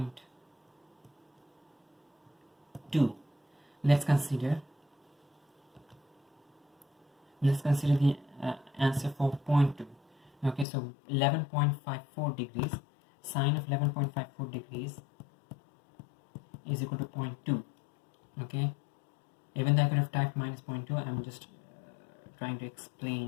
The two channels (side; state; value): right; drops out; at 10.7 s